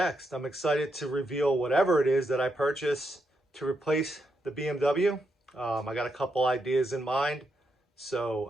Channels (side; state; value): both; normal; correlation 0.82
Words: I'm excited to reveal whatever it is that I purchase to replace the BMW. I got a couple ideas in mind. So